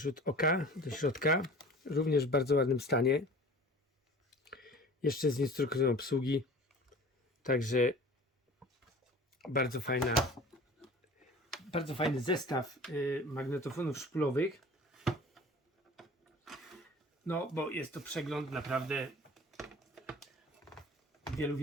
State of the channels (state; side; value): normal; both; correlation 0.42